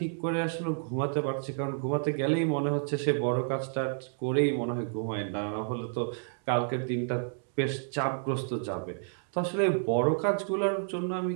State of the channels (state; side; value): silent; left; digital silence